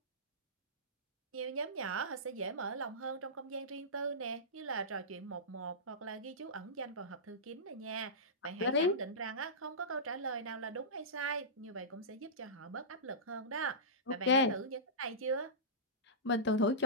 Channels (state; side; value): normal; both; correlation -0.19